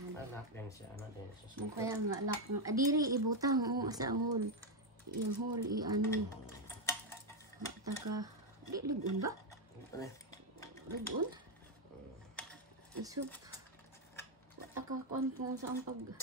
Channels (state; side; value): normal; both; correlation 0.04